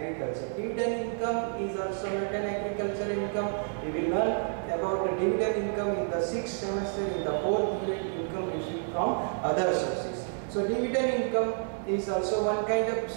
Dividend income is also not an agriculture income. We will learn about the dividend income in the 6th semester in the 4th unit, income received from other sources. So dividend income is also one kind of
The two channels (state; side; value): silent; left; 58 dB below the other